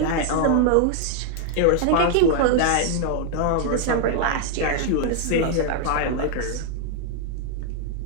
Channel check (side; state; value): both; different; correlation -0.01